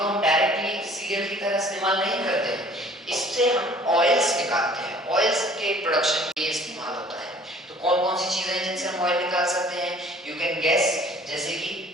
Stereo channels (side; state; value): both; normal; correlation 0.52